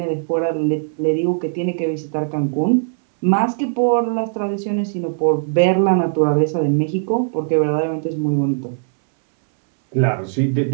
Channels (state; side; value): silent; left; 65 dB below the other